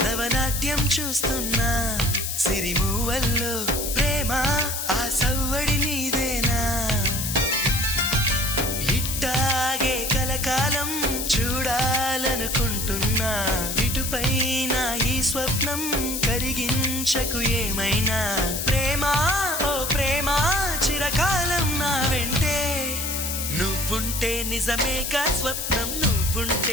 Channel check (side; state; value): left; noise; hiss, 3 dB below the sound